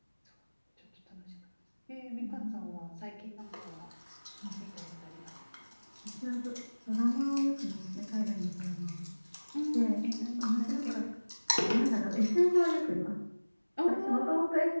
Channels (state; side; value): inverted; both; correlation -1.00